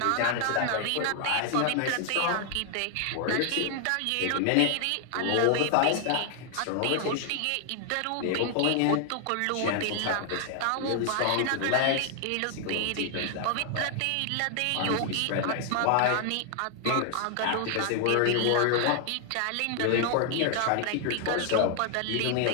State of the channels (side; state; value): both; different; correlation 0.00